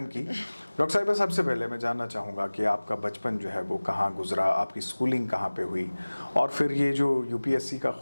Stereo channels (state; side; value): inverted; both; correlation -1.00